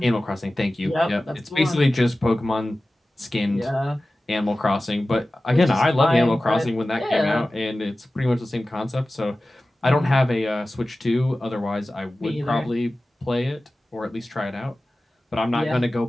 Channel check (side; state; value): both; normal; correlation 0.96